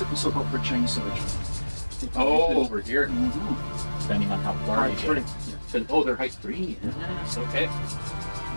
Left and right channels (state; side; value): inverted; both; correlation -1.00